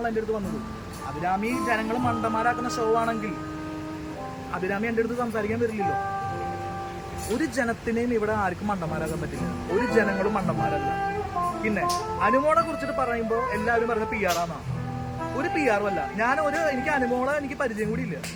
എൻ്റെ അടുത്ത് വന്നത്. അഭിരാമി ജനങ്ങൾ മണ്ടന്മാരാക്കുന്ന ഷോ ആണെങ്കിൽ അഭിരാമി എൻ്റെ അടുത്ത് സംസാരിക്കാൻ വരില്ലല്ലോ. ഒരു ജനത്തിനെയും ഇവിടെ ആർക്കും മണ്ടന്മാരാക്കാൻ പറ്റില്ല, ഒരു ജനങ്ങളും മണ്ടന്മാരല്ല. പിന്നെ അനുമോളെ കുറിച്ചിട്ട് പറയുമ്പോൾ എല്ലാവരും പറഞ്ഞ പി ആർ ആണെന്നാണ്. ഒരു പി ആറും അല്ല. എനിക്ക് അനുമോളെ എനിക്ക് പരിചയം കൂടി ഇല്ല.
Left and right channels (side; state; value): both; identical; correlation 1.00